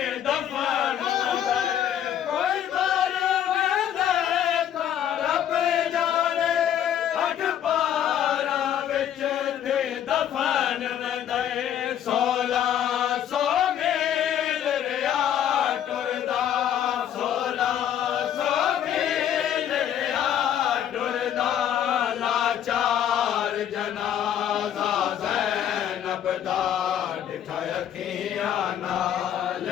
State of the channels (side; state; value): right; quieter; 10.1 dB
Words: दफन कोई मारे मैदान तारा पे जाने अठ पारा विच थे दफन दे 1600 मील रिया टुरदा 1600 मील रिया टुरदा लाचार जनाजा ज़ैनब दा दिखाया किया नाल